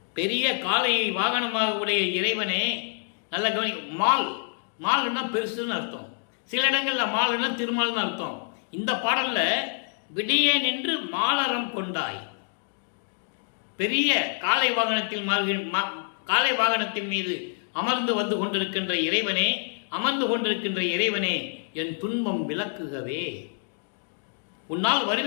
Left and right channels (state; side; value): silent; right; 60 dB below the other